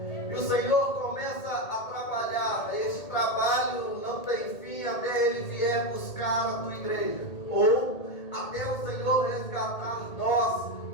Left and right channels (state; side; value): late; right; 1.8 ms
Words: E o Senhor começa a trabalhar. Este trabalho não tem fim até Ele vier buscar a tua igreja. Ou até o Senhor resgatar nós